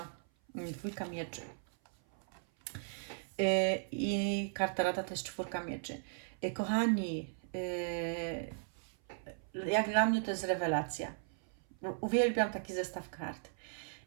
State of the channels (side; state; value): left; silent; 53 dB below the other